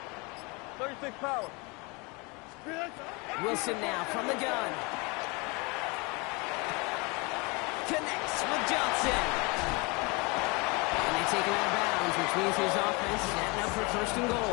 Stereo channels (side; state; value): right; quieter; 28.1 dB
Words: Power. Wilson now from the gun. Connects with Johnson. And they take him out of bounds, which means his offense setting up for 1st and